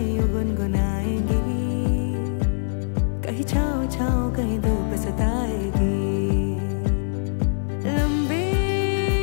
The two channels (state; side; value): silent; right; digital silence